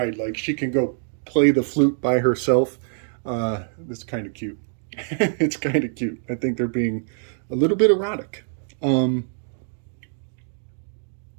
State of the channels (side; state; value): left; silent; digital silence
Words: like she can go play the flute by herself. That's kind of cute. It's kind of cute. I think they're being a little bit erotic.